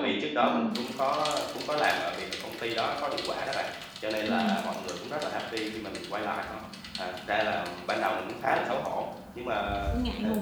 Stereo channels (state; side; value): identical; both; correlation 1.00